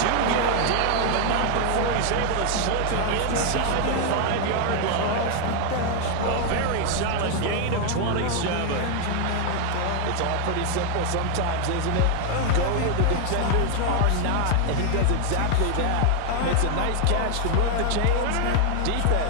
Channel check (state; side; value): different; both; correlation 0.00